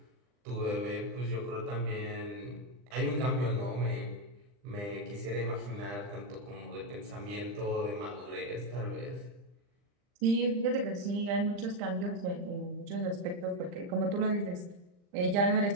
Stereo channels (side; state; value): left; late; 39 ms